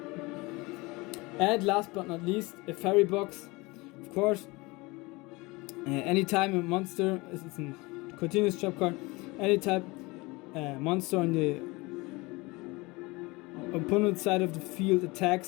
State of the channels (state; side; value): quieter; right; 23.9 dB